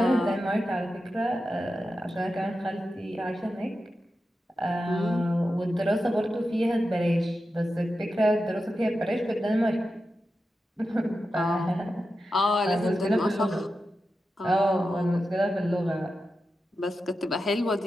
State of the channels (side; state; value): both; normal; correlation 0.91